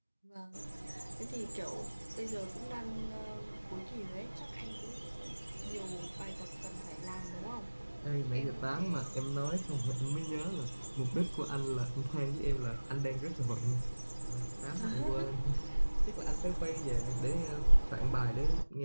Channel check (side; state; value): both; inverted; correlation -1.00